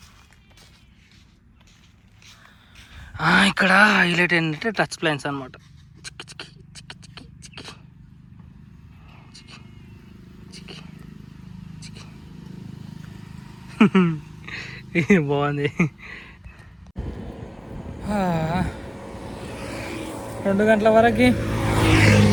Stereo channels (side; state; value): both; identical; correlation 1.00